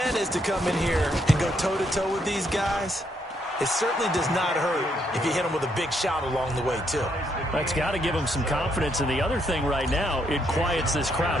is to come in here and go toe-to-toe with these guys, it certainly does not hurt if you hit them with a big shout along the way, too. That's got to give them some confidence. And the other thing right now, it quiets this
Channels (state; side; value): normal; both; correlation 0.75